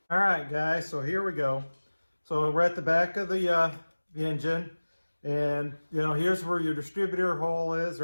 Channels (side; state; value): both; inverted; correlation -1.00